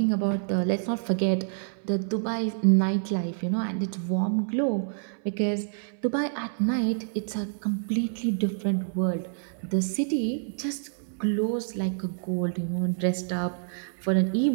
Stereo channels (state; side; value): silent; left; 58 dB below the other